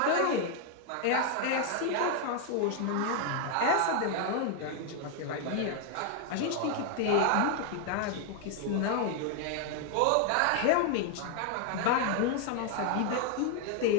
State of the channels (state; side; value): different; both; correlation 0.00